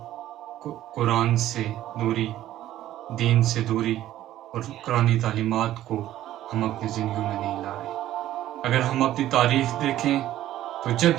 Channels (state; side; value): quieter; left; 13.4 dB